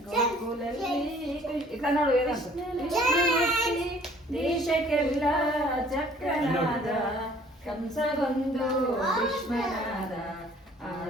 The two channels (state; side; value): normal; both; correlation 0.56